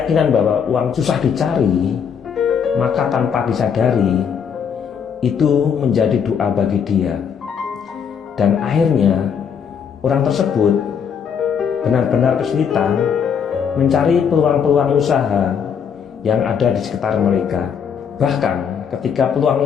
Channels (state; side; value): quieter; right; 7.2 dB